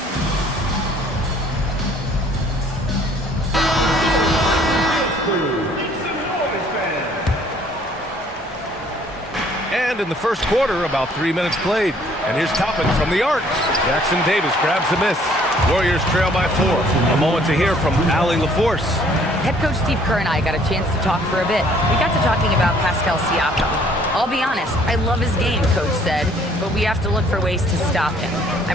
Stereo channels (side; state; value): both; normal; correlation 0.60